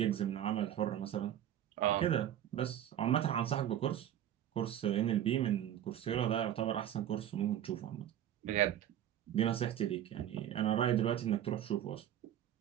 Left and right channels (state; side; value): quieter; left; 11.1 dB